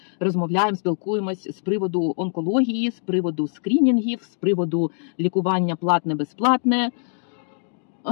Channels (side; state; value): right; silent; digital silence